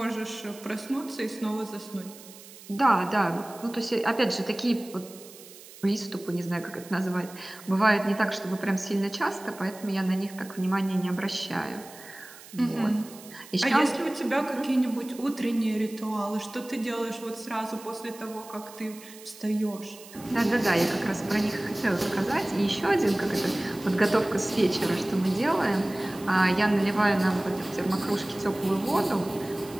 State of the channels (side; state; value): right; noise; hiss, 19 dB below the sound